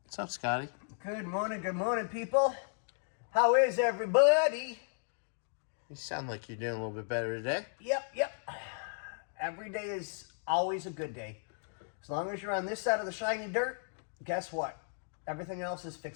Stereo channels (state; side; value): silent; right; 55 dB below the other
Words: What's up, Scotty? Good morning, people. How is everybody? You sound like you're doing a little bit better today. Yep. Every day is always a good day. As long as you're on this side of the shiny dirt, guess what? Everything else is